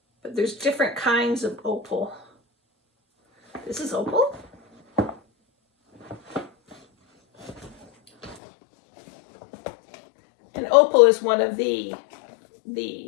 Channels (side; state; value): right; drops out; at 8.4 s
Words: But there's different kinds of opal. This is opal. And opal is one of the